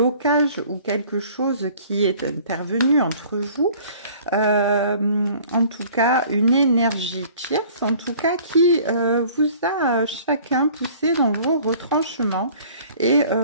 ou quelque chose qui est intervenu entre vous. En tout cas, une énergie tierce, en tout cas, qui vous a chacun poussé dans vos retranchements et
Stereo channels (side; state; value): both; inverted; correlation -0.51